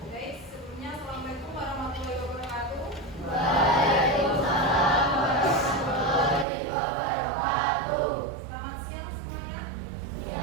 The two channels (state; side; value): drops out; left; at 6.5 s